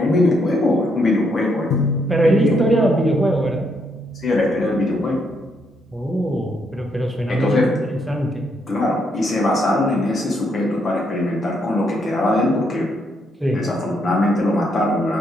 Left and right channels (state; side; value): normal; both; correlation 0.75